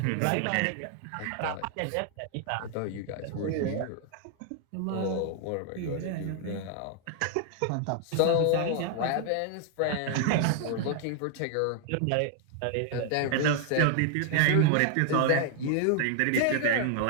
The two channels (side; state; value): both; different; correlation 0.00